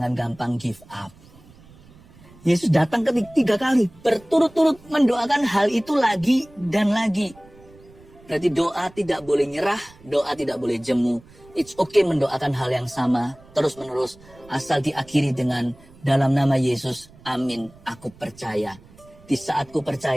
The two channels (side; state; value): right; noise; rumble, 25 dB below the sound